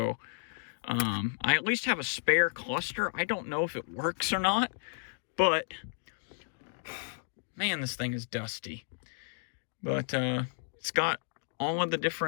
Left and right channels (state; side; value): silent; right; digital silence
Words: I at least have a spare cluster. I don't know if it works or not, but man, this thing is dusty. But it's got all of the